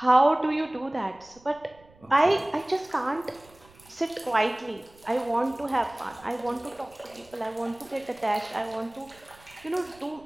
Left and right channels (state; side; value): noise; right; rumble, 27 dB below the sound